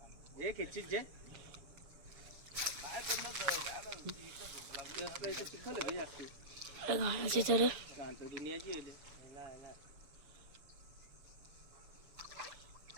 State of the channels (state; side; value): late; left; 6.9 ms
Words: हे खेचीत जे चिखल जास्त घालायचे तर दुनियाची